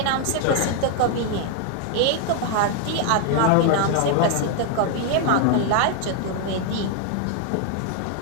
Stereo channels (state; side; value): different; both; correlation 0.00